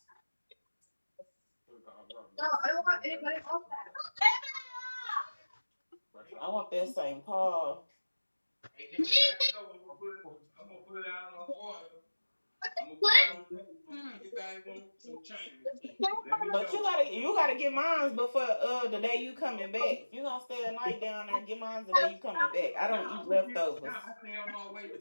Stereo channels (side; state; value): both; inverted; correlation -1.00